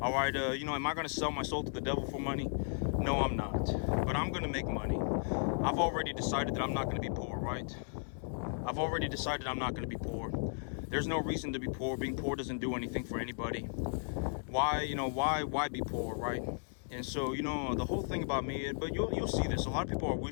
right, you know, am I going to sell my soul to the devil for money? No, I'm not. But I'm going to make money. I've already decided that I'm not going to be poor, right? I've already decided I'm not going to be poor. There's no reason to be poor. Being poor doesn't do anything for anybody. Why, you know, why be poor, right? And so, you know, the whole thing about me, but you'll see this. A lot of people are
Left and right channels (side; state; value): right; silent; digital silence